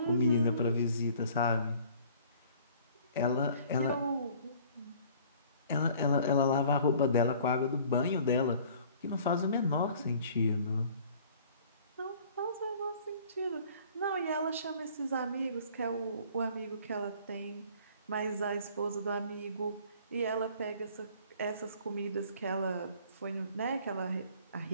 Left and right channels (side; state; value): both; inverted; correlation -0.53